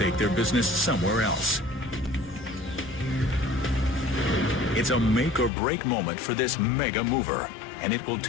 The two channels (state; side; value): drops out; right; at 5.5 s